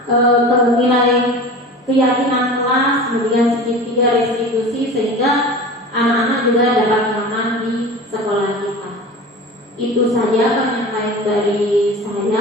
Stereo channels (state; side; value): normal; both; correlation 0.35